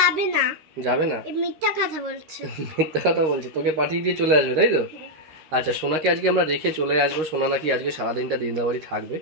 না। যাবে না? মিথ্যা কথা বলছে। মিথ্যা কথা বলছে, তোকে পাঠিয়ে দিয়ে চলে আসবে, তাই তো? আচ্ছা, সোনাকে আজকে আমরা রেখে চলে আসবো। সোনা নাকি আজকে সারাদিনটা দিনদার বাড়ি থাকবে,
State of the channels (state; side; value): late; left; 13 ms